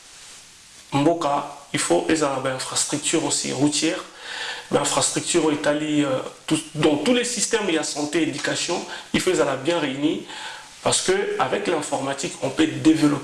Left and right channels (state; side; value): identical; both; correlation 1.00